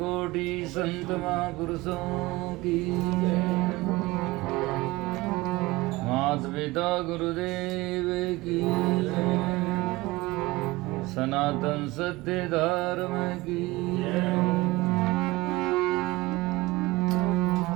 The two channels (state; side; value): quieter; left; 20.9 dB